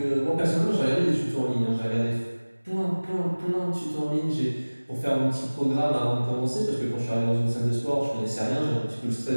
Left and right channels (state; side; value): inverted; both; correlation -1.00